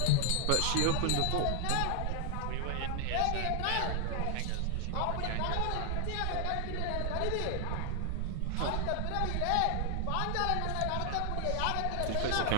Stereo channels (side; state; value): both; different; correlation 0.00